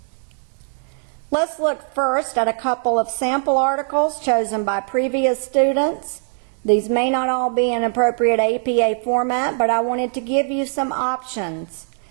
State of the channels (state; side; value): silent; left; 65 dB below the other